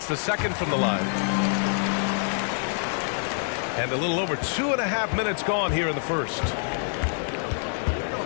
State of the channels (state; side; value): silent; right; 60 dB below the other